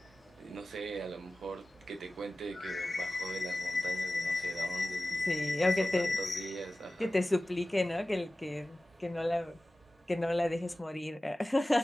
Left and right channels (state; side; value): normal; both; correlation 0.96